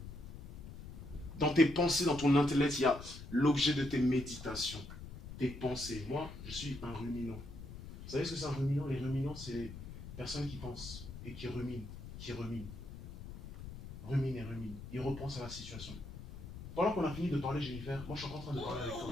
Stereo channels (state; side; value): noise; left; rumble, 12 dB below the sound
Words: Dans tes pensées, dans ton intellect, il y a l'objet de tes méditations, tes pensées. Moi, je suis un ruminant. Vous savez ce que c'est un ruminant? Les ruminants, c'est les personnes qui pensent et qui ruminent, rumine et rumine. Il repense à la situation. Pendant qu'on a fini de parler, Jennifer, moi je suis encore en train de parler avec